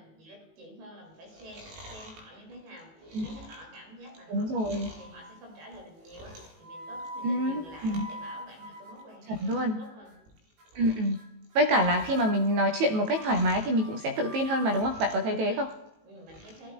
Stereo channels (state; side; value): late; left; 18 ms